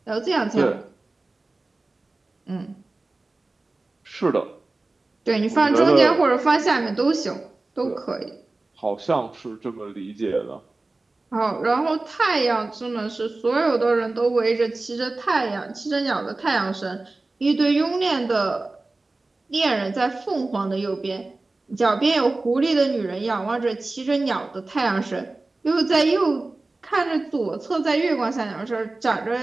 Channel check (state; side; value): quieter; left; 3.2 dB